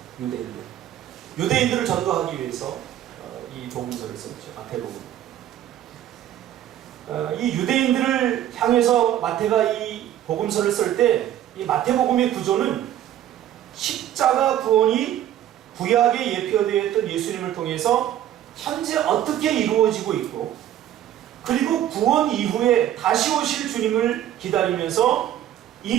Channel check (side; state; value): left; quieter; 11.7 dB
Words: 유대인들을 전도하기 위해서 이 복음서를 썼죠. 마태복음. 이 유대인들을 향해서 마태가 이 복음서를 쓸 때 이 마태복음의 구조는 십자가 구원이 구약에 예표되어 있던 예수님을 통해서 현재 어떻게 이루어지고 있고, 그리고 구원 이후에 다시 오실 주님을 기다리면서